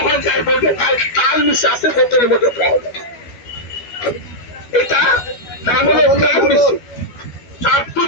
হয়ে যায়, বলবে তাল মিশে আছে বোতলের মধ্যে পাওয়া যায়। এটা নাম হলো তাল মিশি, যার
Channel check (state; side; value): late; right; 12 ms